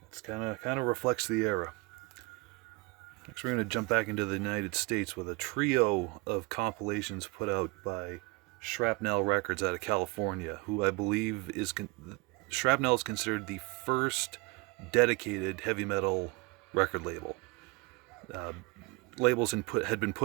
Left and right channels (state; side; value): quieter; left; 26.6 dB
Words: it's kind of reflects the era. Next, we're going to jump back into the United States with a trio of compilations put out by Shrapnel Records out of California, who I believe is Shrapnel is considered the first dedicated heavy metal record label. Labels had been